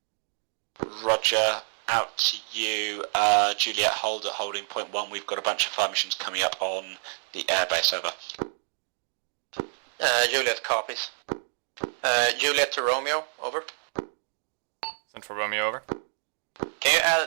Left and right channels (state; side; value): silent; left; 59 dB below the other